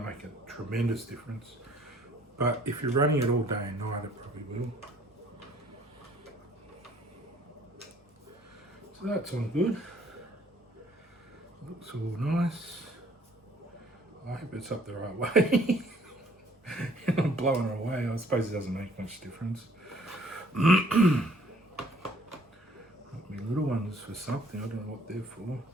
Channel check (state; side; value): normal; both; correlation 0.59